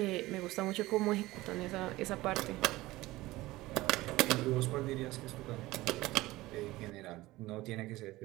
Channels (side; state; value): left; quieter; 18.5 dB